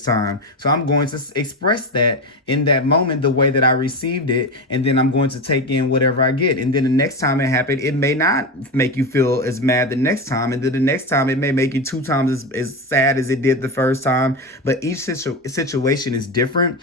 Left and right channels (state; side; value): normal; both; correlation 0.19